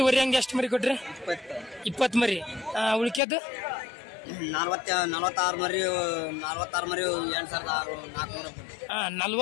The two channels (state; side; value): drops out; right; at 3.2 s